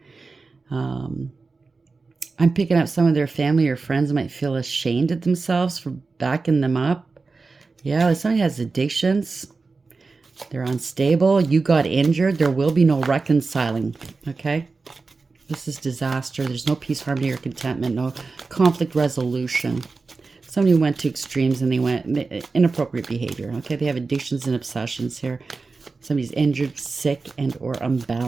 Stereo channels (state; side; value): quieter; left; 4.1 dB